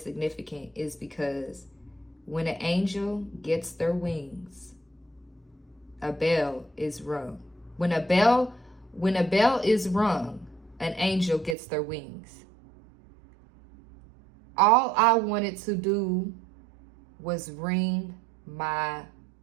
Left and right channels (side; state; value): left; drops out; at 11.6 s